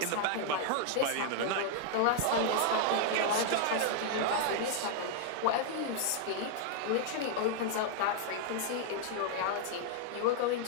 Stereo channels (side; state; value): both; different; correlation 0.00